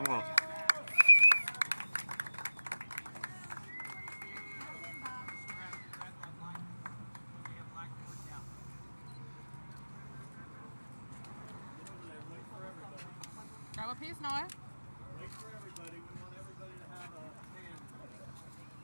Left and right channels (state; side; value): inverted; both; correlation -1.00